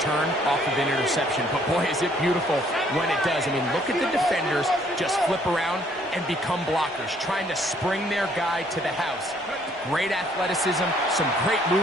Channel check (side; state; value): both; normal; correlation 0.64